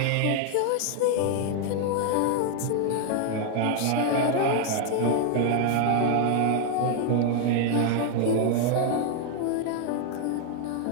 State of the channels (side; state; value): both; different; correlation 0.00